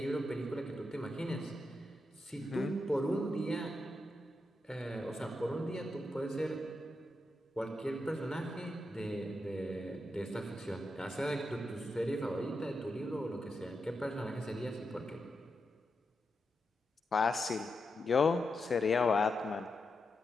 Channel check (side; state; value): both; normal; correlation 0.86